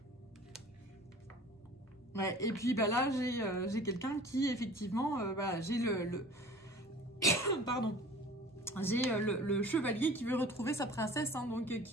Ouais, et puis bah là, j'ai quelqu'un qui, effectivement, voilà, j'ai pardon. J'ai le chevalier qui veut retrouver sa princesse, hein, donc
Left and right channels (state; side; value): normal; both; correlation 0.45